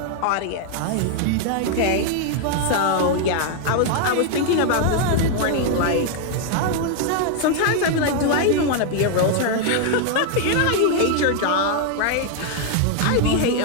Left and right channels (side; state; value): both; different; correlation 0.00